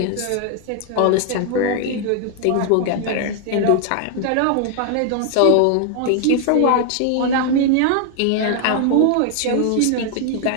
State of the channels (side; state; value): both; different; correlation 0.00